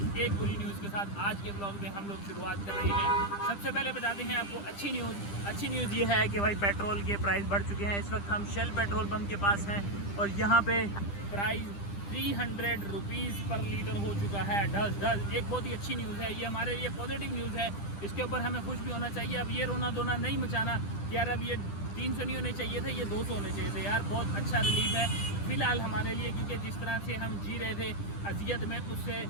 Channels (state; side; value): late; right; 10 ms